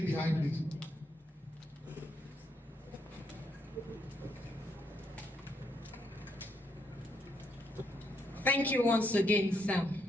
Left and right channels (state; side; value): normal; both; correlation 0.75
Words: behind, please. Thank you once again,